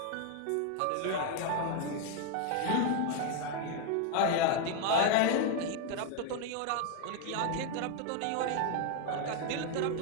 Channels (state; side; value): different; both; correlation 0.00